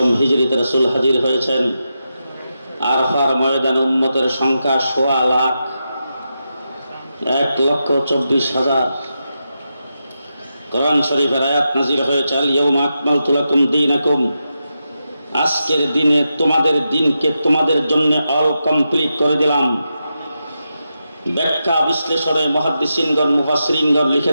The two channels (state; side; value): inverted; both; correlation -0.88